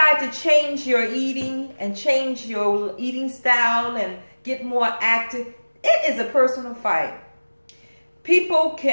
to change your eating and change your eating style and get more active, it is a personal fight. People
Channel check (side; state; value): both; inverted; correlation -1.00